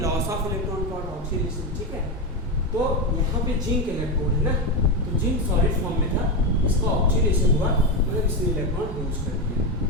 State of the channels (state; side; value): normal; both; correlation 0.12